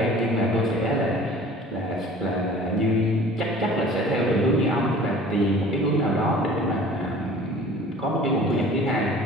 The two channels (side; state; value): both; normal; correlation 0.46